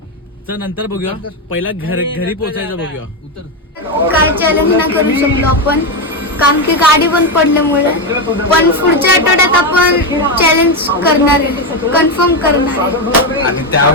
चं नंतर बघूया. पहिला घरी पोहोचायचं बघूया. काय चॅलेंज नाही करू शकलो आपण कारण की गाडी बंद पडल्यामुळे. पण पुढच्या आठवड्यात आपण चॅलेंज करणार आहे, कन्फर्म करणार आहे. आणि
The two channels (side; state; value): both; normal; correlation 0.09